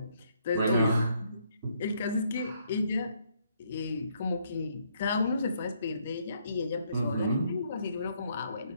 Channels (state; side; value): inverted; both; correlation -0.71